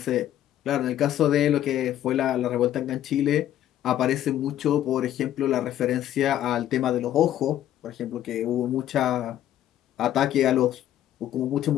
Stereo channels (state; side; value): quieter; right; 12.0 dB